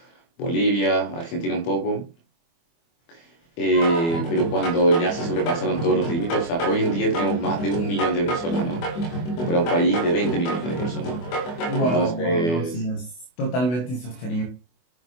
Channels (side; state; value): right; late; 24 ms